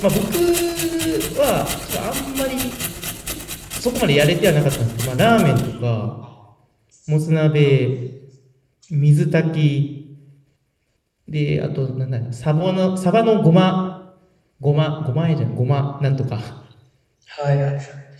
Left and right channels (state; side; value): identical; both; correlation 1.00